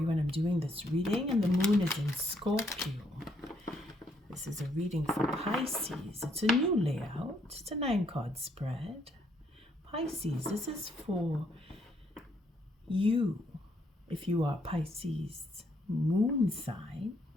when I'm doing this reading, and the moon is in Scorpio. This is a reading for Pisces. It's a new layout. It's a 9-card spread. Pisces, this is for you. If you are Pisces moon sign,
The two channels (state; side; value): normal; both; correlation 0.72